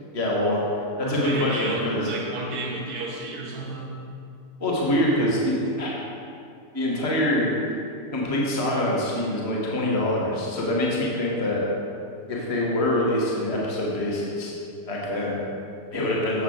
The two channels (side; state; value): left; late; 6.8 ms